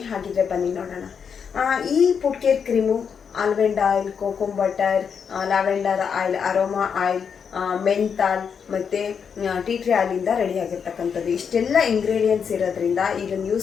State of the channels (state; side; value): quieter; right; 6.8 dB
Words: ಹಾಗಿದ್ರೆ ಬನ್ನಿ ನೋಡೋಣ. ಈ foot care cream almond oil, cocoa butter, lavender oil, aroma oil, menthol ಮತ್ತು ಟೀ ಟ್ರೀ ಆಯಿಲಿಂದ ರೆಡಿ ಆಗಿರ್ತಕ್ಕಂಥದ್ದು. ಇಷ್ಟೆಲ್ಲ ಇಂಗ್ರೀಡಿಯೆಂಟ್ಸ್ ಇರೋದ್ರಿಂದ ಇದನ್ನು